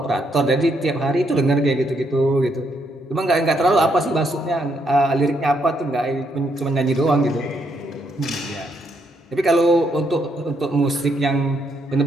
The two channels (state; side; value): normal; both; correlation 0.75